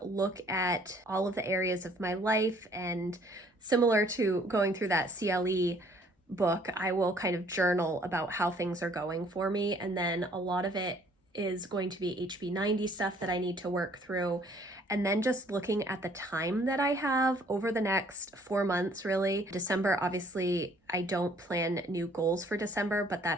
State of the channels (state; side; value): normal; both; correlation 0.60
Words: look at all of the areas of my life, and similar to going through that CLE book, I will kind of journal about how things are going for me. And then a lot of it is going to be HB90 stuff that I need to work through. And then just looking at the time that I have over the next 4 months, really. December, obviously, I don't plan new goals for December, but